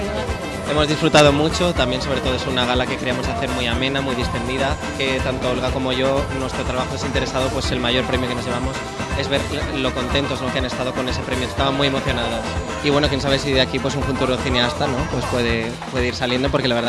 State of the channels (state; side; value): identical; both; correlation 1.00